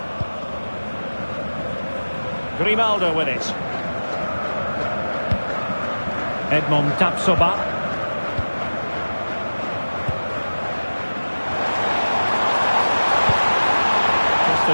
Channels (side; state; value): both; inverted; correlation -1.00